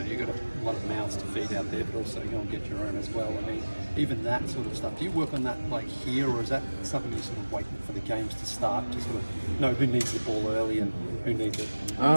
you've got a lot of mouths to feed out there, but also go and get your own as well. I mean, even that sort of stuff. Do you work on that like here, or is that something you're sort of waiting for the games to start to sort of know who needs the ball early and who needs it?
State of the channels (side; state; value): both; inverted; correlation -1.00